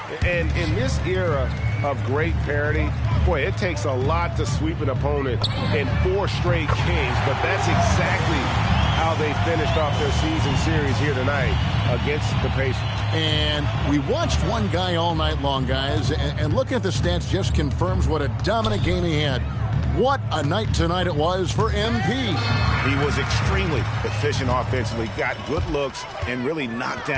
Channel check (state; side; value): identical; both; correlation 1.00